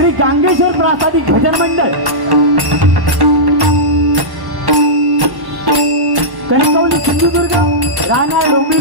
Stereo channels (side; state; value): left; late; 1.0 ms